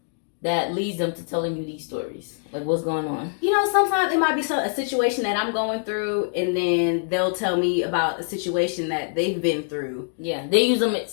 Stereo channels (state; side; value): silent; right; digital silence